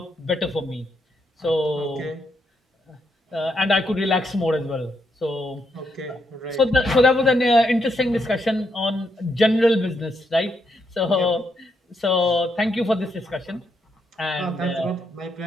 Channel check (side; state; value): both; normal; correlation 0.78